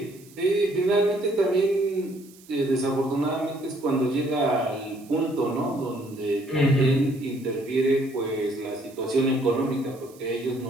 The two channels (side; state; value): right; noise; hiss, 25 dB below the sound